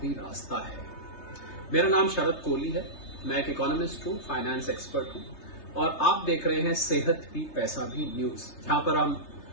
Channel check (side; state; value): right; late; 3.3 ms